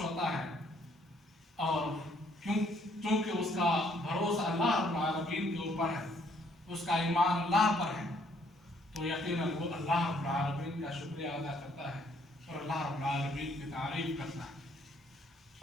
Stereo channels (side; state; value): both; normal; correlation 0.66